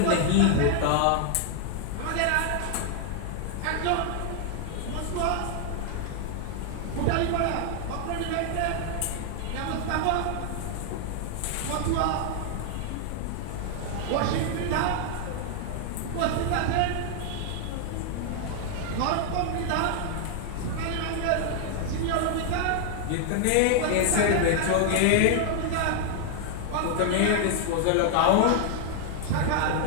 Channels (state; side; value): different; both; correlation 0.00